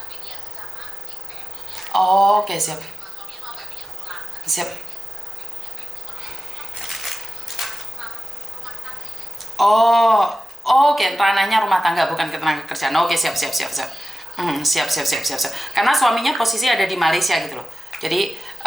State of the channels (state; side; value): normal; both; correlation 0.93